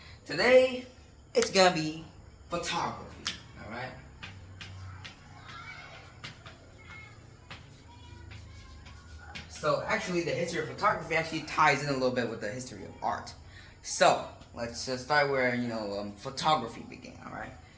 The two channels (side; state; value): both; identical; correlation 1.00